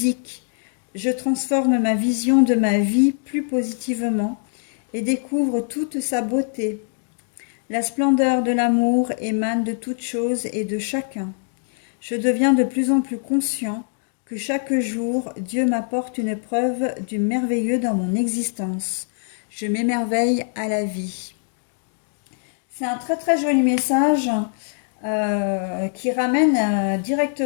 Je transforme ma vision de ma vie plus positivement et découvre toute sa beauté. La splendeur de l'amour émane de toutes choses et de chacun. Je deviens de plus en plus conscient que chaque jour, Dieu m'apporte une preuve du merveilleux dans mon existence. Je m'émerveille à la vie. C'est un très très joli message qui ramène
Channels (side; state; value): right; silent; digital silence